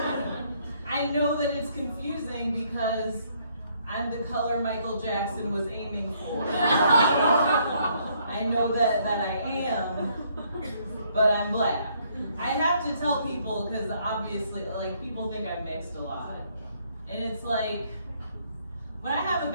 I know that it's confusing because I'm the color Michael Jackson was aiming for. I know that I am, but I'm black. I have to tell people because obviously, like, people think I'm mixed a lot. And it's like, when I have a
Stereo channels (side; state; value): both; inverted; correlation -0.68